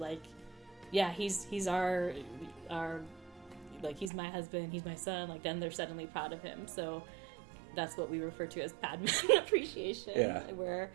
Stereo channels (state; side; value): drops out; left; at 4.1 s